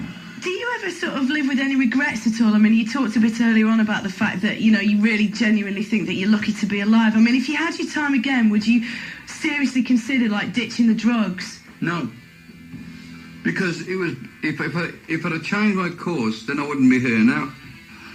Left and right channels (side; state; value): both; identical; correlation 1.00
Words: Do you ever sort of live with any regrets at all? I mean, you talked a bit earlier on about the fact that, you know, you really genuinely think that you're lucky to be alive. I mean, if you had your time again, would you seriously consider, like, ditching the drugs? No. Because it was, if I'd have changed my course, then I wouldn't be here now.